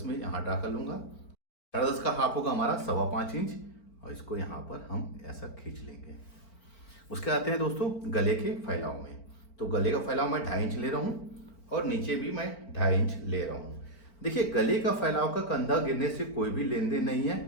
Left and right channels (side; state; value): right; late; 4.4 ms